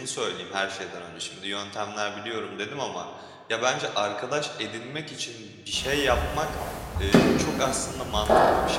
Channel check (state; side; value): identical; both; correlation 1.00